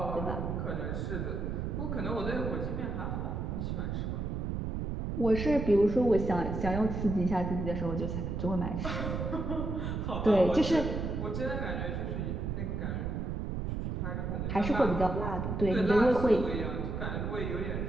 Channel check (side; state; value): right; noise; rumble, 2 dB below the sound